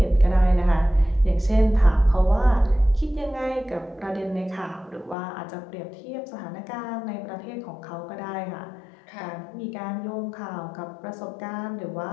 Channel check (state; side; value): drops out; right; at 5.2 s